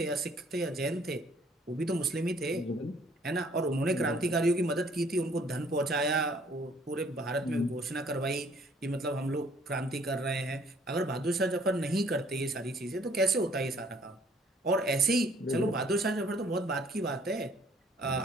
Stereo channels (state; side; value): normal; both; correlation 0.60